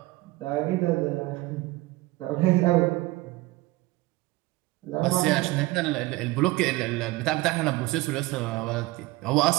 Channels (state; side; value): quieter; left; 20.0 dB